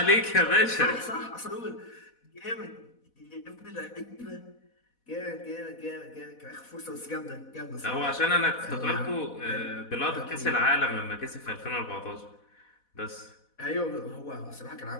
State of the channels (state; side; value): late; right; 4.1 ms